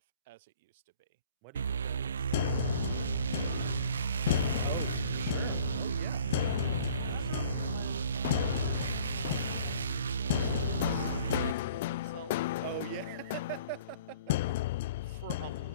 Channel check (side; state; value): both; inverted; correlation -0.50